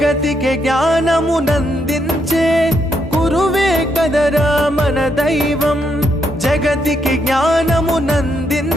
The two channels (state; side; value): normal; both; correlation 0.78